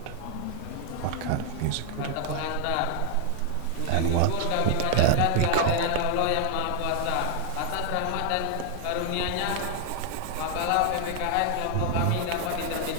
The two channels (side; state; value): both; different; correlation 0.00